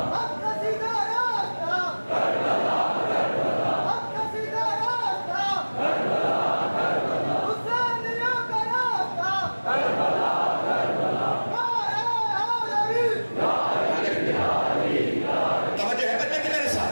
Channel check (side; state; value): both; inverted; correlation -1.00